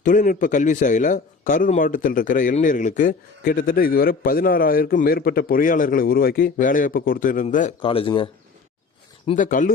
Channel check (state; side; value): quieter; right; 4.6 dB